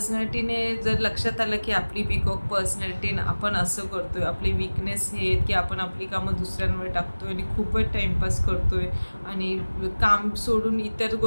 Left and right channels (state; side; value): inverted; both; correlation -1.00